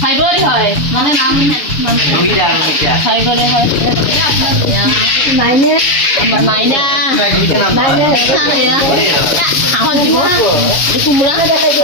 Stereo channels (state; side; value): late; right; 7.0 ms